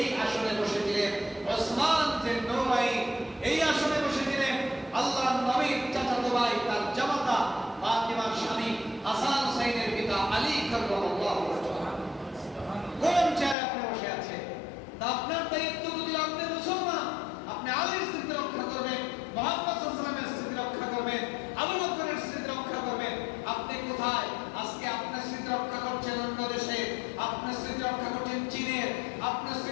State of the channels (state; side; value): drops out; right; at 13.6 s